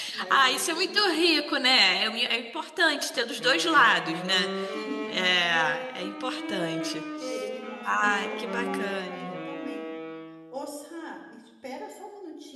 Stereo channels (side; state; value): both; identical; correlation 1.00